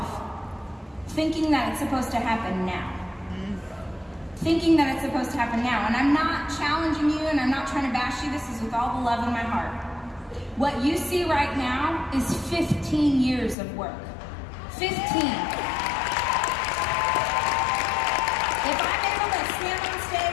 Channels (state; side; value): drops out; right; at 13.6 s